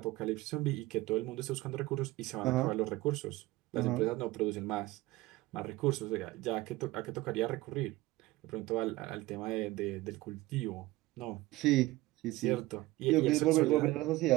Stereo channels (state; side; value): quieter; left; 18.9 dB